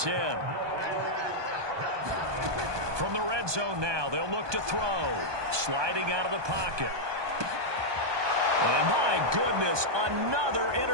From the red zone now, they'll look to throw. Sliding out of the pocket. And my goodness, another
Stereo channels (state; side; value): late; left; 1.2 ms